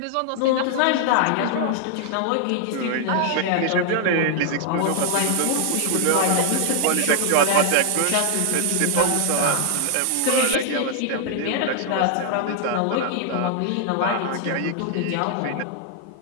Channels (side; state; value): both; different; correlation 0.00